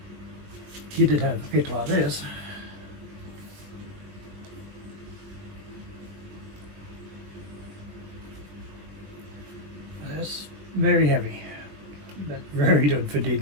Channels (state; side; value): late; left; 20 ms